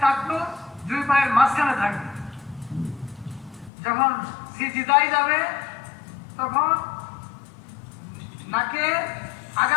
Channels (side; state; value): right; drops out; at 3.7 s